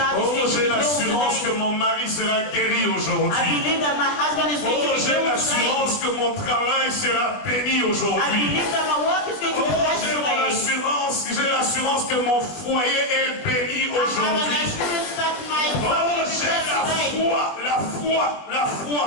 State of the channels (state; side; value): late; right; 21 ms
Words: Oh, j'ai l'assurance que mon mari sera guéri aujourd'hui. Oh, j'ai l'assurance que mon travail sera béni aujourd'hui. Oh, j'ai l'assurance que mon foyer est béni aujourd'hui. Oh, j'ai la